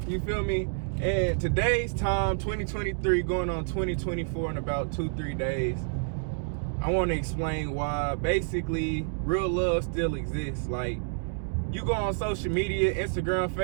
you feel me? And today's time, 2023 going on 2024 in about 2-3 days, I want to explain why basically real love still exists. Like, you go on social media, Instagram,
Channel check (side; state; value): left; silent; digital silence